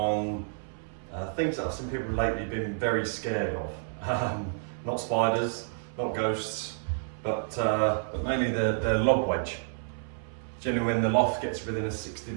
things that I've seen people lately been very scared of. Not spiders, not ghosts, but mainly the lob wedge. Generally when the loft gets within a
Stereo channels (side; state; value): left; silent; 58 dB below the other